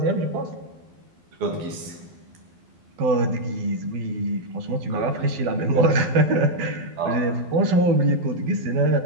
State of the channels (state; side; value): late; left; 12 ms